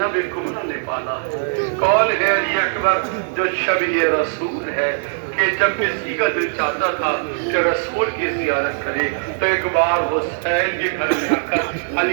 کمرہ نے پالا؟ کون ہے علی اکبر جو شبیہ رسول ہے کہ جب کسی کا دل چاہتا تھا کہ رسول کی زیارت کرے تو ایک بار حسین کے گھر میں آ کر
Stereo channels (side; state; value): left; silent; digital silence